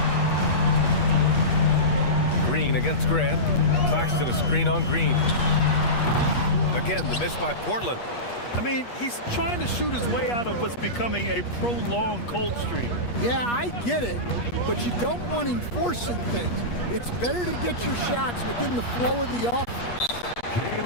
Green against Grant. Claxton a screen on Green. Again, the miss by Portland. I mean, he's trying to shoot his way out of what's becoming a prolonged cold streak. Yeah, I get it, but you don't want him forcing things. It's better to get your shots within the flow of the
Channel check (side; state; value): right; late; 8.4 ms